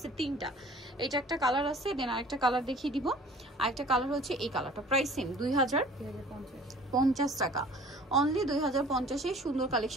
3টা। এটা একটা কালার আছে, দেন আরেকটা কালার দেখিয়ে দিব। আরেকটা কালার হচ্ছে এই কালারটা। প্রাইসিং 2050 টাকা, অনলি 2050। এই সুন্দর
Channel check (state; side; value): normal; both; correlation 0.49